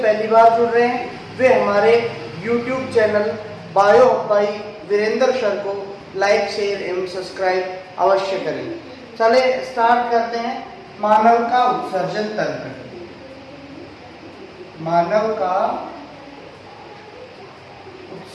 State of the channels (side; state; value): both; identical; correlation 1.00